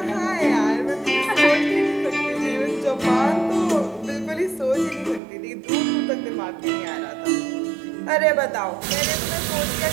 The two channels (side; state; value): left; drops out; at 5.2 s